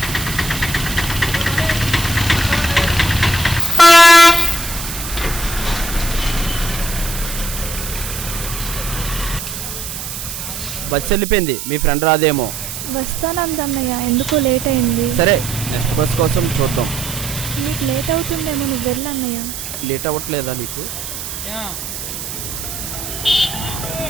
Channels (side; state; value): right; noise; hiss, 7 dB below the sound